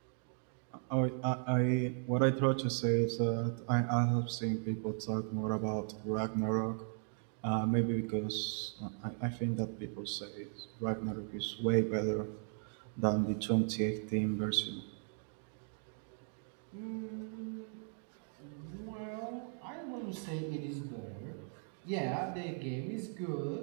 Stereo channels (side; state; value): left; silent; 53 dB below the other